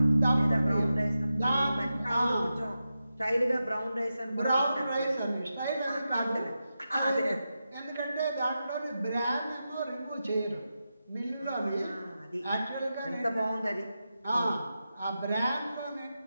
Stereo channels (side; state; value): both; inverted; correlation -0.90